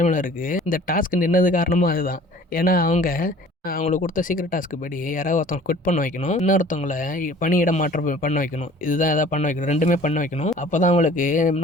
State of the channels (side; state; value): both; normal; correlation 0.49